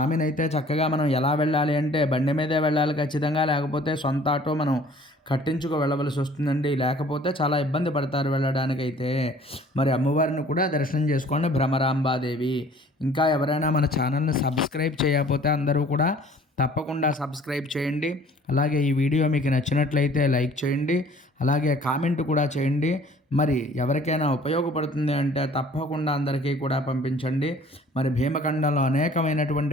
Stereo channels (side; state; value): both; normal; correlation 0.53